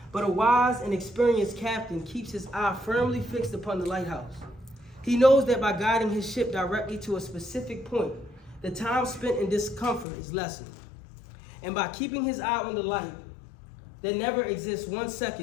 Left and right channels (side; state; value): right; drops out; at 10.1 s